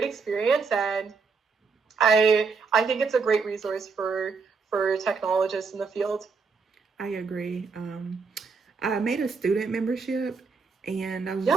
experience, and I think it's a great resource for technologists in the field. I agree. I made a student membership, and I was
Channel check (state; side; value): quieter; left; 5.0 dB